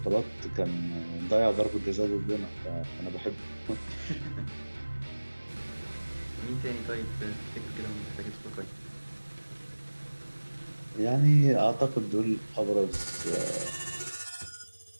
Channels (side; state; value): both; inverted; correlation -1.00